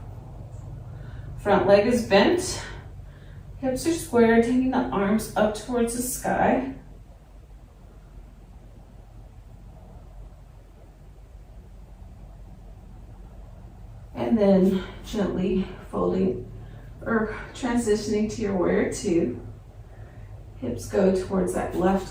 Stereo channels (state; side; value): identical; both; correlation 1.00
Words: Front leg is bent, hips are square, taking the arms up towards the sky. And then gently folding or transitioning to your warrior two. Hips go towards that left